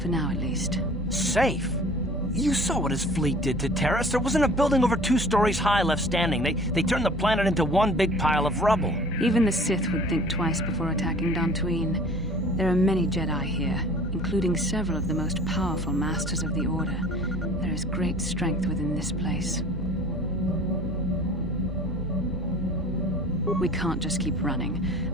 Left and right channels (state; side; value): normal; both; correlation 0.47